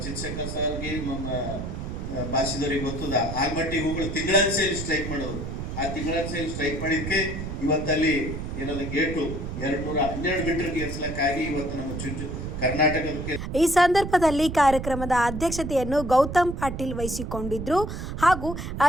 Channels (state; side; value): noise; right; rumble, 6 dB below the sound